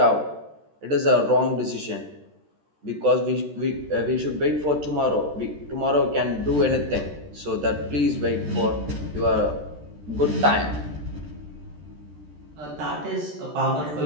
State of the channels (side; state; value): left; late; 13 ms